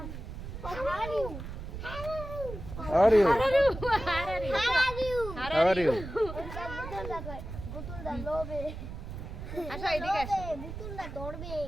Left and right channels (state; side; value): noise; right; rumble, 9 dB below the sound